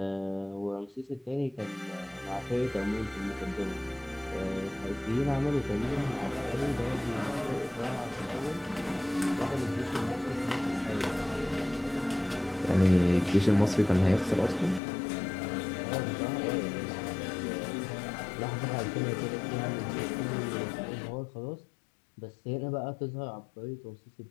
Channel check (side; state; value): right; drops out; at 14.8 s